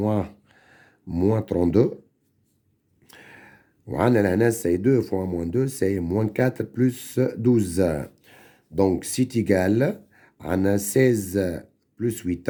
32. وعندنا c'est 2 fois moins 2, c'est moins 4 plus 12. Donc, c'est égal à 16 plus 8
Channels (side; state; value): both; identical; correlation 1.00